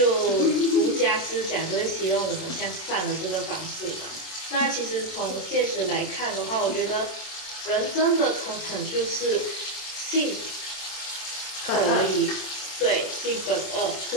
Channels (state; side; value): late; right; 27 ms